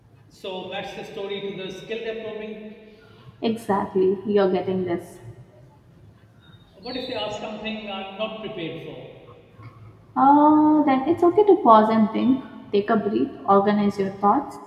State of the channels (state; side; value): identical; both; correlation 1.00